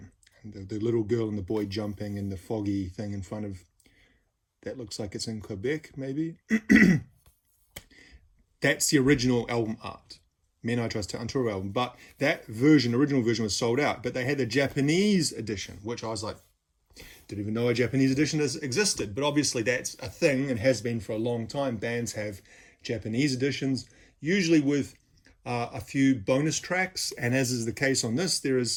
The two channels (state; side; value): identical; both; correlation 1.00